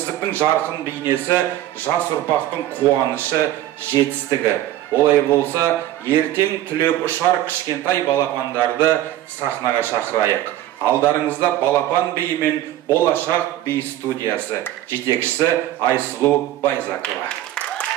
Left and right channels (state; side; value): quieter; left; 13.4 dB